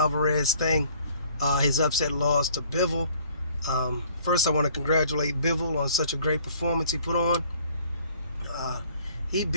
thing, his upset loss to Bivol. First, I want to congratulate Bivol on such a great performance he put on. He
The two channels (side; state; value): both; inverted; correlation -0.58